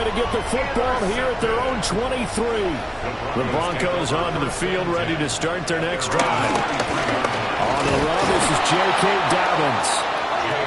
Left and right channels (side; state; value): both; identical; correlation 1.00